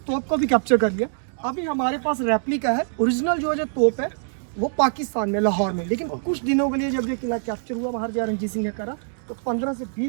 तोप को भी कैप्चर कर लिया। अभी हमारे पास रेप्लिका है, ओरिजिनल जो तोप है वो पाकिस्तान में, लाहौर में। लेकिन कुछ दिनों के लिए जब ये किला कैप्चर हुआ महाराजा रणजीत सिंह ने करा, तो 15 से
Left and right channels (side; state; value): left; silent; digital silence